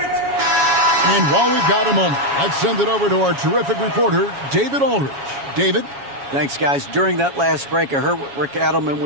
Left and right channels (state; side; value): late; left; 7.2 ms